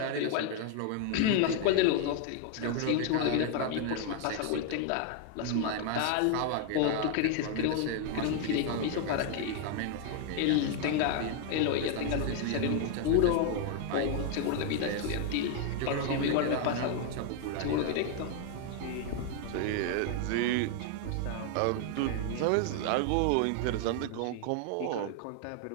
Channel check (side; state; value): both; different; correlation 0.00